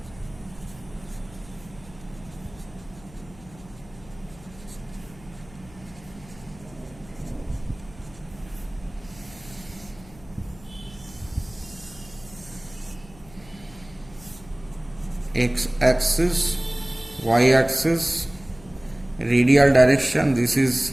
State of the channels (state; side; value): noise; left; hum, 22 dB below the sound